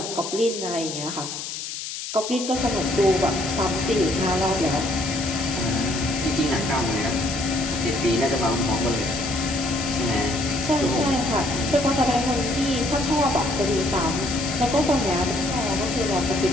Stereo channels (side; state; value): left; noise; hiss, 7 dB below the sound